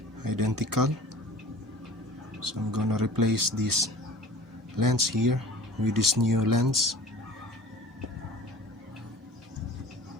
identical. So I'm gonna replace this lens here with this new lens.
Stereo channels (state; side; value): normal; both; correlation 0.43